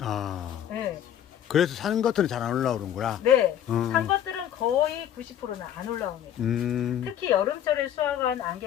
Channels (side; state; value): right; quieter; 10.3 dB